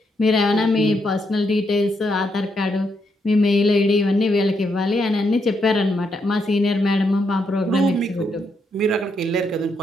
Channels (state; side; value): normal; both; correlation 0.78